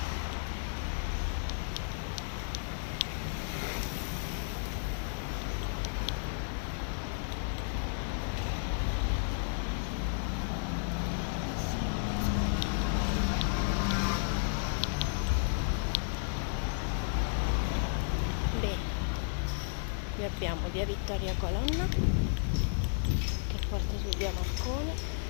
Qui abbiamo via Vittoria Colonna che porta su via Marconi.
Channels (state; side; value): silent; right; 56 dB below the other